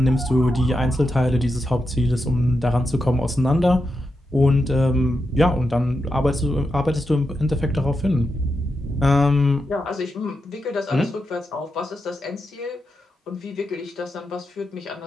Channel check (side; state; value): both; normal; correlation 0.86